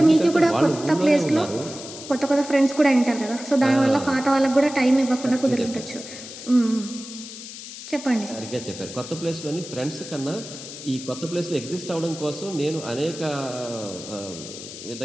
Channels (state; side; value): noise; left; hiss, 12 dB below the sound